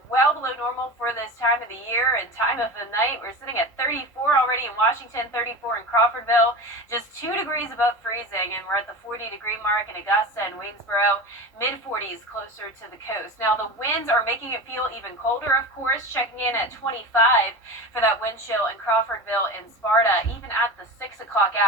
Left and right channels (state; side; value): normal; both; correlation 0.29